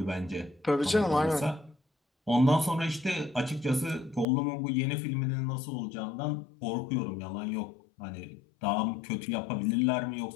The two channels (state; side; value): drops out; right; at 4.2 s